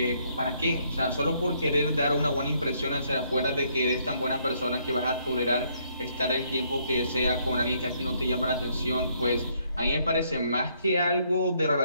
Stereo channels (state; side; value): inverted; both; correlation -0.70